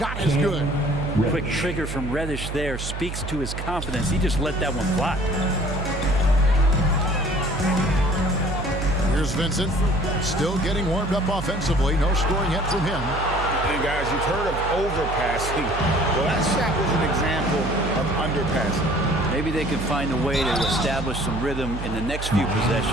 is good. Quick trigger from Reddish there speaks to his confidence. He just let that one fly. Here's Vincent, still getting warmed up offensively. No scoring yet from him. And guys, you've heard of overpassing. Well, that shot was an example of underpassing. Maybe they can find a way to establish some rhythm in the next few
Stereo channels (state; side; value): noise; right; hum, 6 dB below the sound